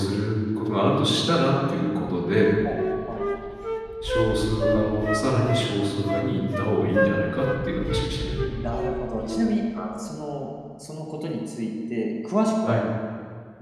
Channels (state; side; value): identical; both; correlation 1.00